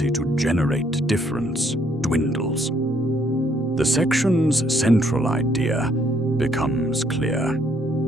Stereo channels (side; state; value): both; normal; correlation 0.68